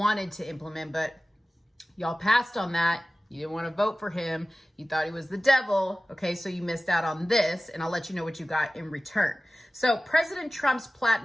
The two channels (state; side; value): normal; both; correlation 0.96